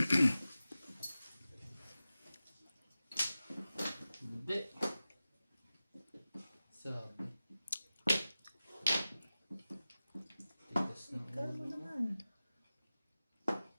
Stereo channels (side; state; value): both; inverted; correlation -0.95